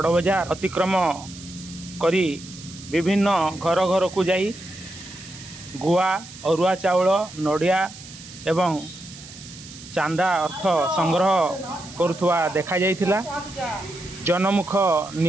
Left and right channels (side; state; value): right; noise; hiss, 16 dB below the sound